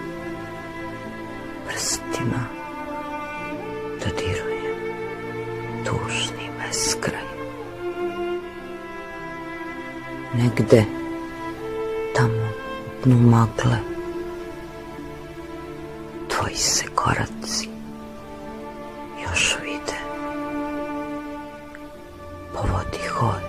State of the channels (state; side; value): identical; both; correlation 1.00